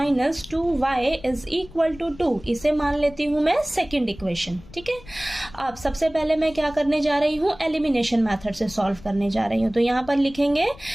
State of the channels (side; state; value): left; noise; rumble, 20 dB below the sound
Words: 2y is equal to 2। इसे मान लेती हूं मैं सेकंड इक्वेशन। ठीक है, अब सबसे पहले मैं क्या करने जा रही हूं, एलिमिनेशन मेथड से सॉल्व करने जा रही हूं। तो यहां पर लिखेंगे